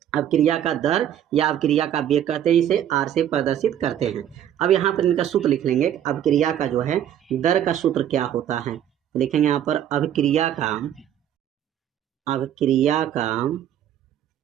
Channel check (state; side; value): quieter; left; 10.5 dB